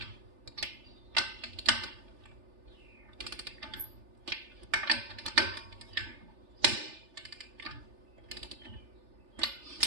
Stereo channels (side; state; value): left; late; 3.4 ms